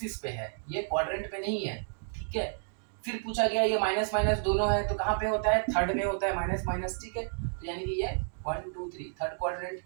पे है, ये क्वाड्रेंट पे नहीं है, ठीक है। फिर पूछा गया ये माइनस माइनस दोनों है, तो कहाँ पे होता है, थर्ड में होता है माइनस माइनस, ठीक है। तो यानी कि ये 1 2 3 थर्ड क्वाड्रेंट।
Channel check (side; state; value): left; silent; digital silence